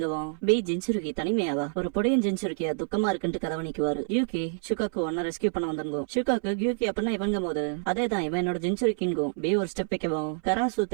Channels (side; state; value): left; silent; 60 dB below the other